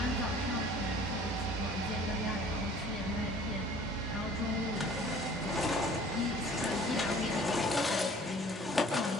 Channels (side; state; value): both; normal; correlation 0.50